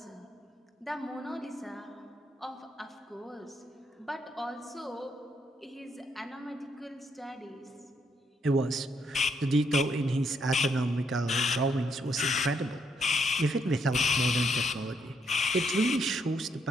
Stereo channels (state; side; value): normal; both; correlation 0.75